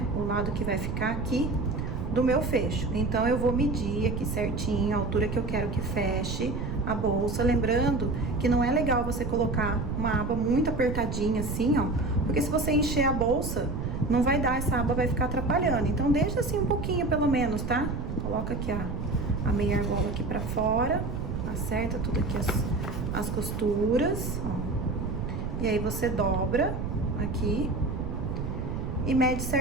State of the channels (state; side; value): noise; right; rumble, 4 dB below the sound